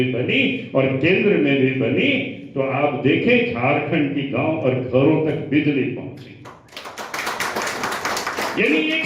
बनी और केंद्र में भी बनी, तो आप देखें झारखंड की गांव और घरों तक बिजली पहुंची। यानी एक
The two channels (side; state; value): both; identical; correlation 1.00